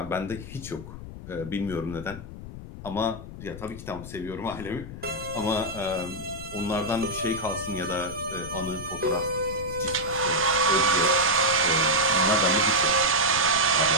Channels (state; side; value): noise; left; rumble, 12 dB below the sound